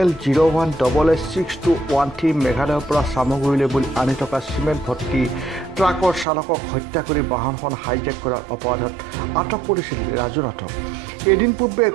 মেঘালয়ৰ পৰা চামগুৰিলৈ বুলি আনি থকা চিমেণ্ট ভৰ্তি ট্ৰাকৰ চালকক হত্যা কৰি বাহনখন হাইজেক কৰাৰ অপৰাধত আটক কৰিছিল ৰাজু নাথক। এদিন পূৰ্বে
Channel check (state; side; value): drops out; left; at 6.2 s